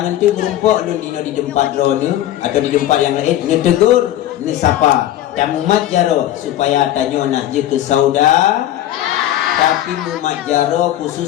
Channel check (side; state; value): right; quieter; 13.0 dB